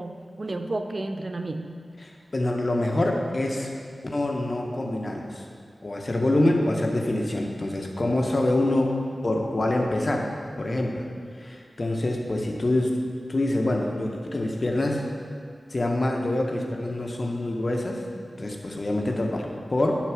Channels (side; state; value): both; normal; correlation 0.96